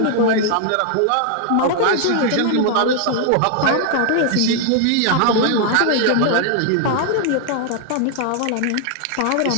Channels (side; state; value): both; different; correlation 0.00